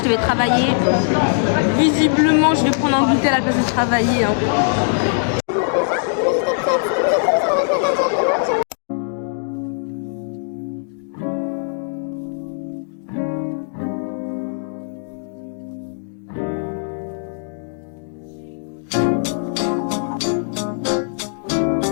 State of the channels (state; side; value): silent; right; digital silence